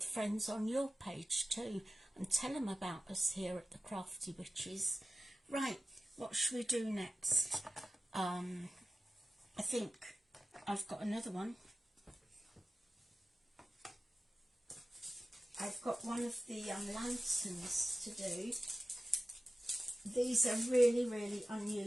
friends on your page too, and tell them about us here at the Crafty Witches. Right, what should we do next? I think I've got another one. I've got one of the lanterns to do. These are really, really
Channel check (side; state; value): both; normal; correlation 0.95